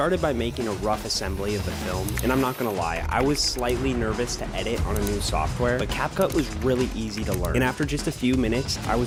by making a rough assembly of the film, and I'm not gonna lie, I was slightly nervous to edit on a new software, but CapCut was really easy to learn. And after just a few minutes, I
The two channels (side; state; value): both; identical; correlation 1.00